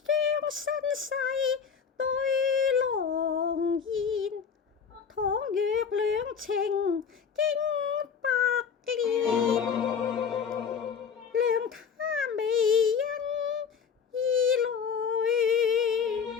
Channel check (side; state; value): right; quieter; 6.6 dB